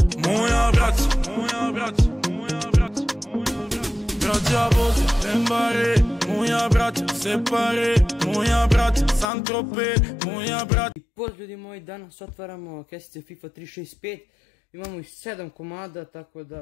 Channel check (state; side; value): drops out; right; at 9.2 s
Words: moja braća, moja braća, moja braća, moja braća. Braća Bože, Dembare, moja braća, Separe, moja braća, Saint-Tropez, moja braća. I pozdrav ljudi moji, danas otvaramo kesice FIFA 365. Imamo ih 7 komada, tako